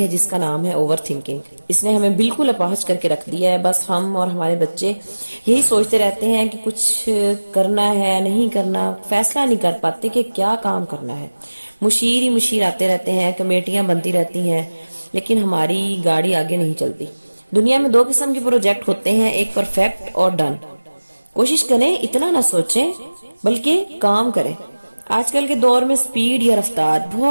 ہے جس کا نام ہے اوور تھنکنگ۔ اس نے ہمیں بالکل اپاہج کر کے رکھ دیا ہے۔ بس ہم اور ہمارے بچے یہی سوچتے رہتے ہیں کہ کچھ کرنا ہے، نہیں کرنا، فیصلہ نہیں کر پاتے کہ کیا کام کرنا ہے۔ مشیر ہی مشیر آتے رہتے ہیں، کمیٹیاں بنتی رہتی ہیں، لیکن ہماری گاڑی آگے نہیں چلتی۔ دنیا میں دو قسم کے پروجیکٹ ہوتے ہیں، ایک پرفیکٹ اور ڈن۔ کوشش کریں اتنا نہ سوچیں بلکہ کام کریں۔ آج کل کے دور میں سپیڈ یا رفتار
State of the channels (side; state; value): both; inverted; correlation -1.00